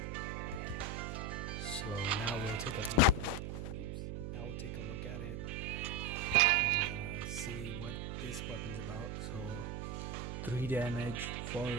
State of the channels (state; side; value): noise; right; hum, 5 dB below the sound